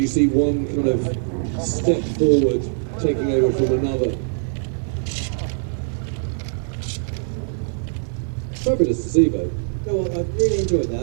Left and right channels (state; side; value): silent; left; 58 dB below the other